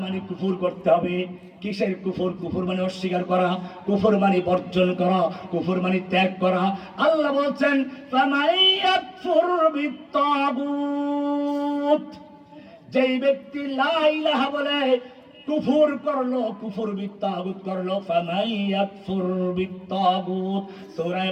মানে কুফর করতে হবে। কিসের কুফর? কুফর মানে অস্বীকার করা, কুফর মানে বর্জন করা, কুফর মানে ত্যাগ করা। আল্লাহ বলছেন ফামাইয়াকফুর বিত্তাগুত, যেই ব্যক্তি লা ইলাহা বলে কুফর করলো, কুফর বিত্তাগুত করলো। ফামাইয়াকফুর বিত্তাগুত, সূরা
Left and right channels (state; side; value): identical; both; correlation 1.00